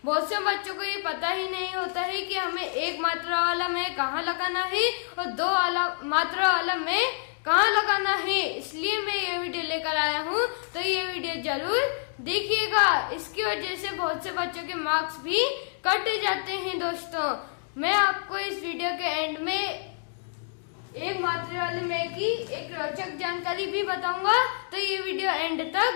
बहुत से बच्चों को ये पता ही नहीं होता है कि हमें एक मात्रा वाला मैं कहाँ लगाना है और दो मात्रा वाला मैं कहाँ लगाना है। इसलिए मैं ये वीडियो लेकर आया हूँ, तो ये वीडियो जरूर देखिएगा। इसकी वजह से बहुत से बच्चों के मार्क्स भी कट जाते हैं। दोस्तों, मैं आपको इस वीडियो के एंड में एक मात्रा वाले मैं की एक रोचक जानकारी भी बताऊंगा, तो ये वीडियो एंड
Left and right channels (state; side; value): silent; right; digital silence